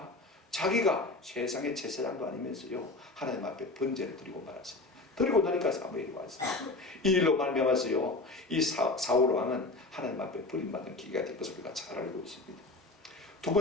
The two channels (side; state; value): right; quieter; 3.1 dB